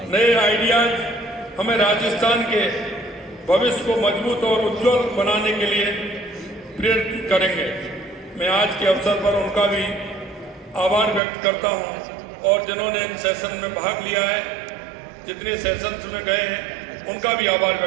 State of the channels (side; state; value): left; drops out; at 11.2 s